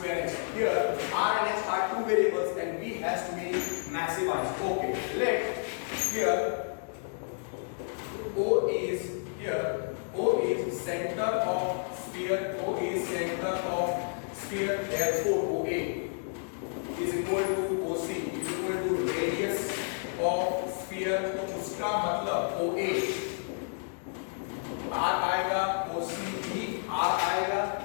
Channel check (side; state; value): right; silent; digital silence